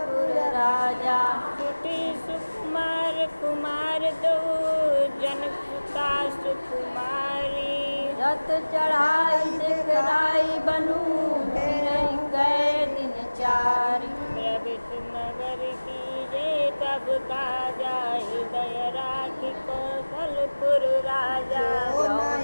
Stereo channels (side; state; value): both; inverted; correlation -1.00